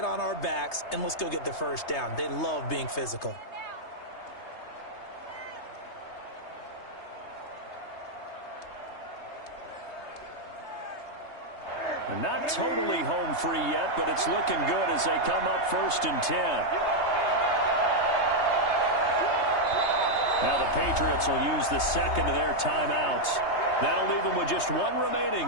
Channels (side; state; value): right; late; 3.3 ms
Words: on our backs and let's go get the first down." They love being physical. Not totally home free yet, but it's looking good as they come up 1st and 10. Now the Patriots will use the 2nd of their timeouts. That'll leave them with just 1